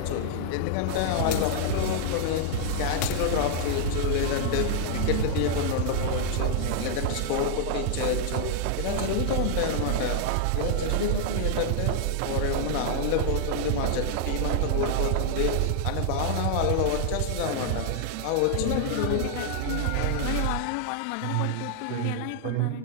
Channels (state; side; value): different; both; correlation 0.00